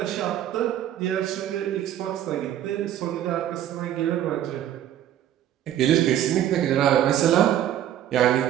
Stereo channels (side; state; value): left; quieter; 11.4 dB